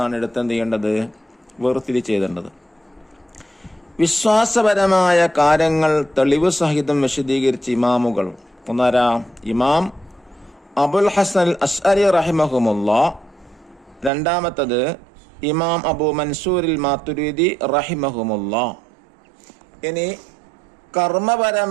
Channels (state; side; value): drops out; left; at 14.1 s